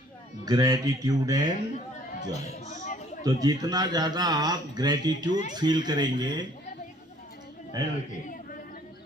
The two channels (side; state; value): both; normal; correlation 0.58